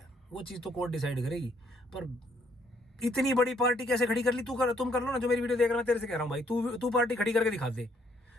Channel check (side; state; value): both; normal; correlation 0.68